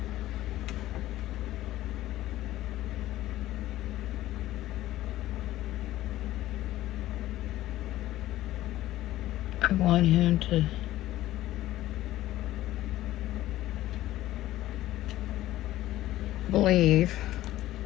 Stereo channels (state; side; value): quieter; right; 15.0 dB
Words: I want him to believe